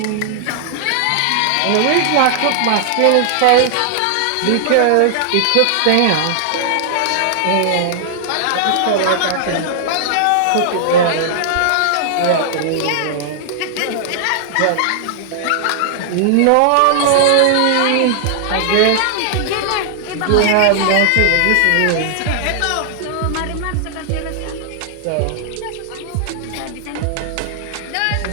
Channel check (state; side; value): different; both; correlation -0.01